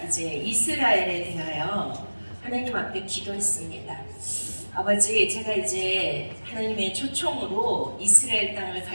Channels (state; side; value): inverted; both; correlation -1.00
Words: 이제 이스라엘에 대하여 하나님 앞에 기도했습니다. 아버지, 제가 이제 하나님의 초청으로 이스라엘 땅을